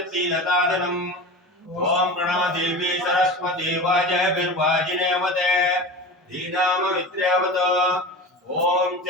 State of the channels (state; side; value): normal; both; correlation 0.31